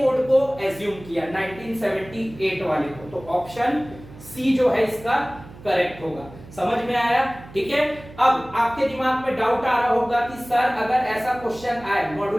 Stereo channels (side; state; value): right; noise; hum, 18 dB below the sound